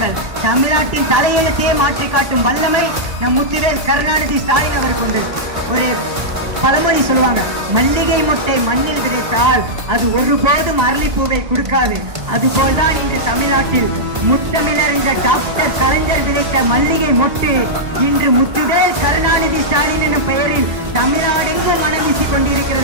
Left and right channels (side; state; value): left; late; 1.5 ms